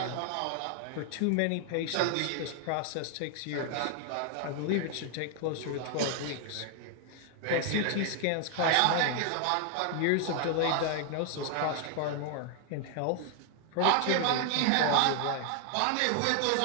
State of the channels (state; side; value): different; both; correlation 0.00